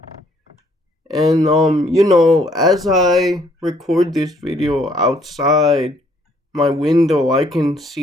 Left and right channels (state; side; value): normal; both; correlation 0.65